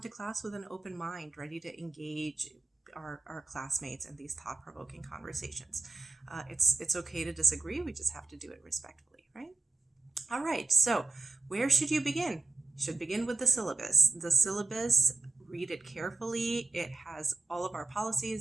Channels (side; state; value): left; quieter; 3.3 dB